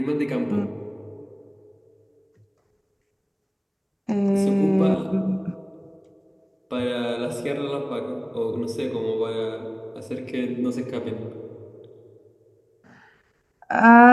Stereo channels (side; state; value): both; identical; correlation 1.00